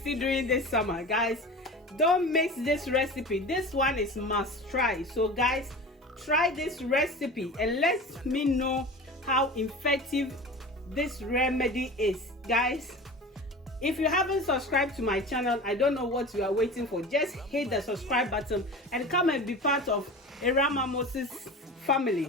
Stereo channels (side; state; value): both; normal; correlation 0.34